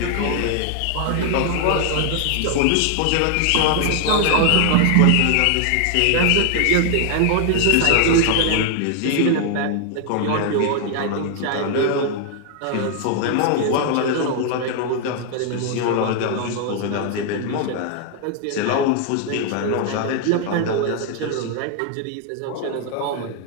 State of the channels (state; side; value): different; both; correlation 0.00